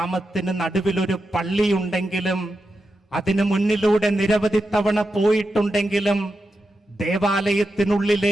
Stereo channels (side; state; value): both; normal; correlation 0.89